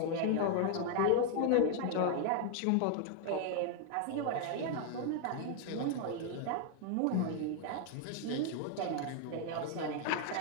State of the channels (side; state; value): both; different; correlation 0.00